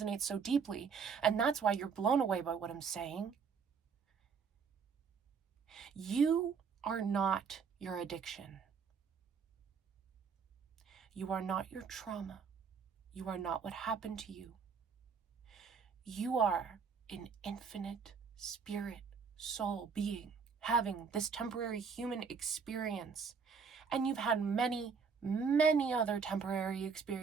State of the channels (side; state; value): left; quieter; 5.8 dB